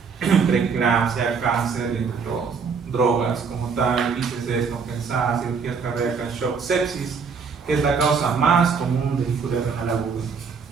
preeclampsia, cáncer, entre otros, ¿no? Drogas como tal, ICC descompensadas, cirugías cardíacas, shock, sepsis, que es la causa más común de injuria renal aguda.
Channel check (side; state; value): left; quieter; 5.6 dB